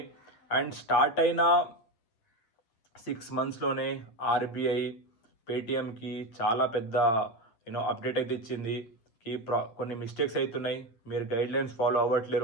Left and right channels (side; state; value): right; late; 9.3 ms